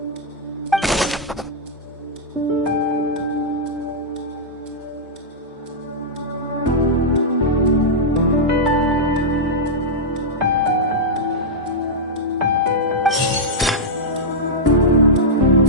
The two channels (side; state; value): both; normal; correlation -0.08